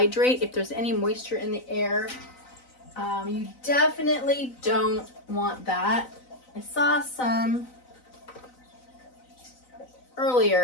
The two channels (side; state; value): right; late; 4.0 ms